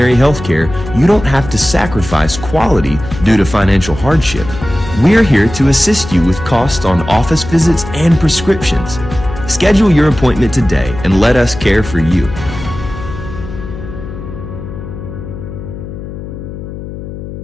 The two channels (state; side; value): noise; left; hum, 10 dB below the sound